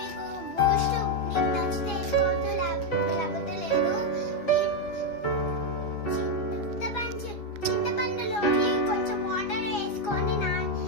బూస్ట్ మీకు నచ్చితే వేసుకోవచ్చు, లేకపోతే లేదు. చింతపండులోని కొంచెం వాటర్ వేసుకొని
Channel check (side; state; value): right; late; 6.0 ms